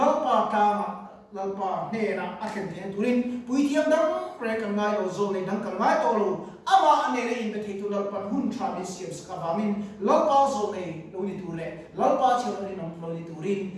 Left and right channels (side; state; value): both; identical; correlation 1.00